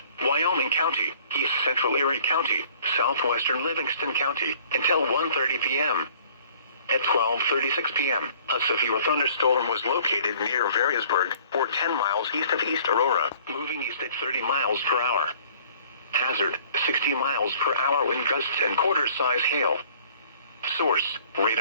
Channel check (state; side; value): inverted; both; correlation -0.53